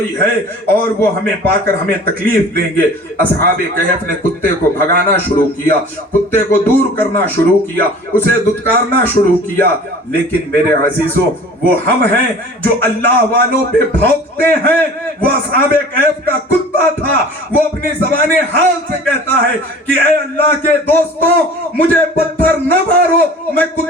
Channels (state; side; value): normal; both; correlation 0.44